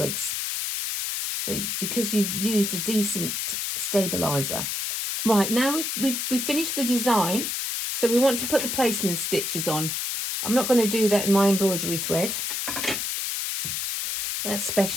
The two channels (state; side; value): noise; left; hiss, 2 dB below the sound